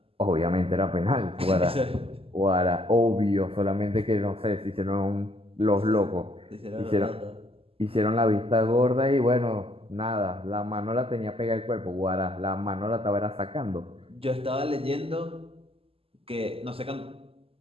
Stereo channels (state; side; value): late; left; 0.28 ms